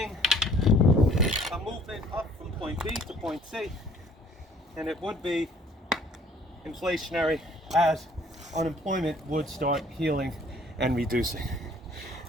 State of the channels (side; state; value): both; normal; correlation 0.57